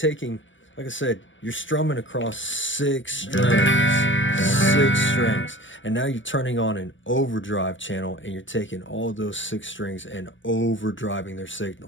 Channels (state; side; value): late; right; 0.56 ms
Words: like I said, you're strumming across 6 strings, and now you're turning on an overdrive channel, and you're taking all of those 6 strings and overdriving their